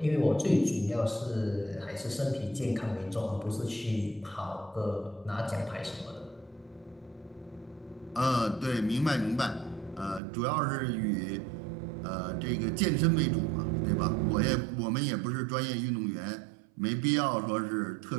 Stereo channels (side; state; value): left; drops out; at 10.2 s